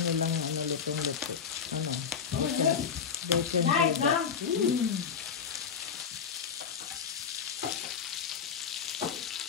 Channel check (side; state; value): right; quieter; 6.7 dB